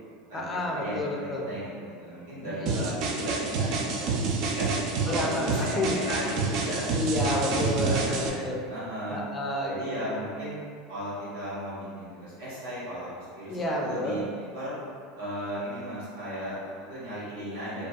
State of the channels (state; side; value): normal; both; correlation 0.21